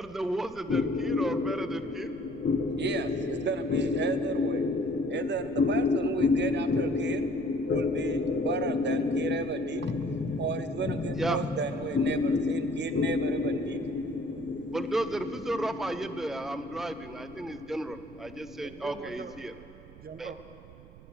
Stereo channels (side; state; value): right; noise; rumble, 20 dB below the sound